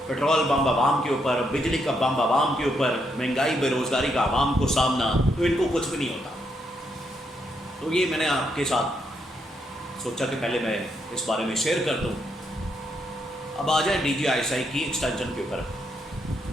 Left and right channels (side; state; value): both; normal; correlation 0.78